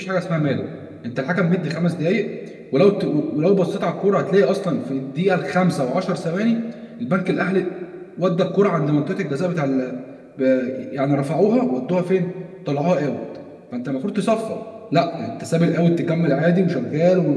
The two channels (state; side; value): identical; both; correlation 1.00